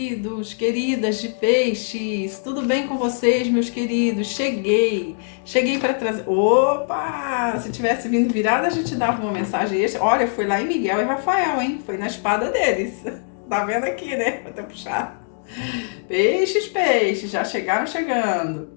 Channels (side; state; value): right; silent; digital silence